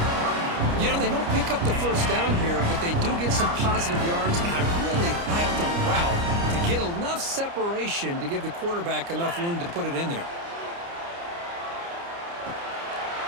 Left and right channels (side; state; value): left; late; 29 ms